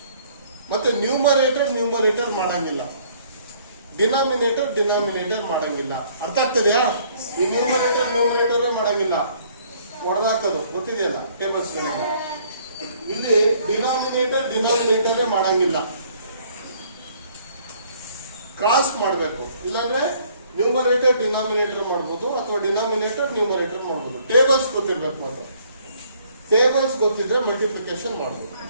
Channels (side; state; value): both; inverted; correlation -0.61